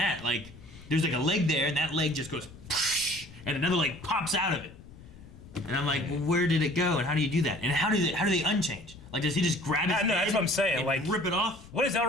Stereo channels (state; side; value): noise; left; rumble, 19 dB below the sound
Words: Like there's like a leg there, and that leg just goes, and another leg pops out of it. And I'm like, well, where did it go? And how do you do that? And how do they unchange? Like, does he just grab his No, that's head what I'm saying, and like- rip it off? What does